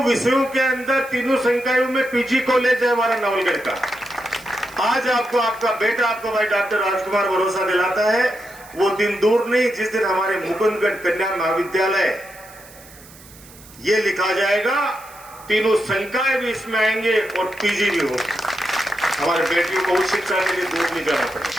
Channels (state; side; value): noise; right; hiss, 22 dB below the sound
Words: विषयों के अंदर, तीनों संकायों में पीजी कॉलेज है हमारा नवलगढ़ का। आज आपको आपका बेटा, आपका भाई डॉक्टर राजकुमार भरोसा दिलाता है। वो दिन दूर नहीं जिस दिन हमारे मुकुंदगढ़ कन्या महाविद्यालय ये लिखा जाएगा, तीनों संकाय भी इसमें आएंगे और पीजी भी होगा। हमारे बेटियों को उच्च शिक्षा के लिए दूर नहीं जाना